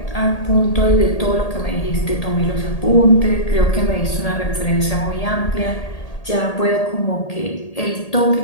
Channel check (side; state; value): right; late; 1.8 ms